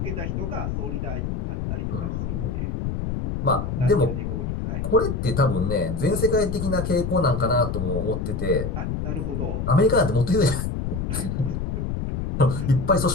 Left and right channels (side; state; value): left; noise; rumble, 2 dB below the sound